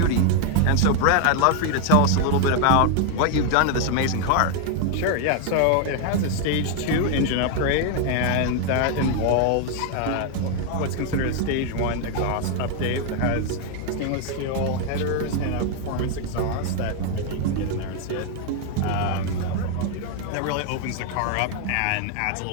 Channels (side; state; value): both; different; correlation 0.00